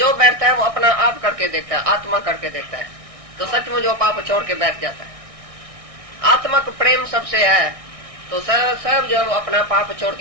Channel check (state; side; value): late; left; 1.6 ms